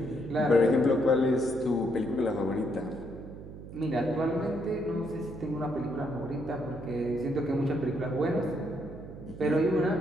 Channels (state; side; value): noise; right; hum, 13 dB below the sound